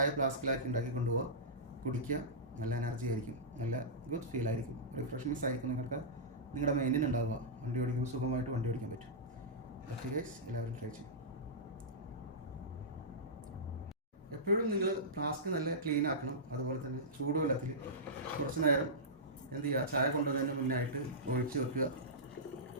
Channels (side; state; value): both; normal; correlation -0.15